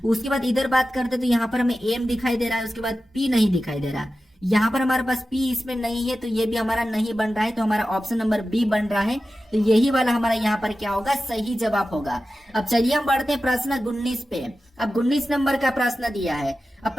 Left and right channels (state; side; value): normal; both; correlation 0.93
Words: उसके बाद इधर बात करते तो यहाँ पर हमें एम दिखाई दे रहा है, उसके बाद पी नहीं दिखाई दे रहा। यहाँ पर हमारे पास पी इसमें नहीं है, तो ये भी हमारा नहीं बन रहा है, तो हमारा ऑप्शन नंबर बी बन रहा है। तो यही वाला हमारा यहाँ पर क्या होगा, सही जवाब होगा। अब चलिए हम बढ़ते हैं प्रश्न 19 पे। अब 19 नंबर का प्रश्न दिया है। अब